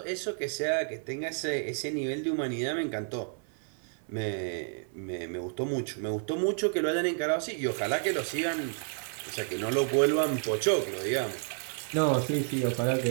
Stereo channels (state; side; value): silent; left; 55 dB below the other